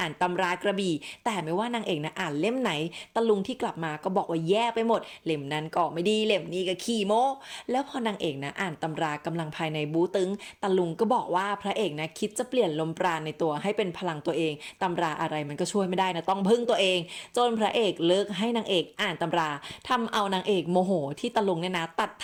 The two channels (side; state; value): both; identical; correlation 1.00